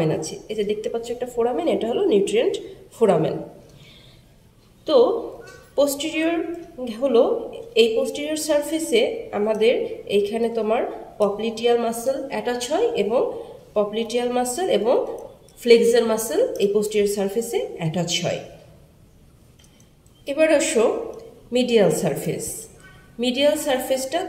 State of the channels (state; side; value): identical; both; correlation 1.00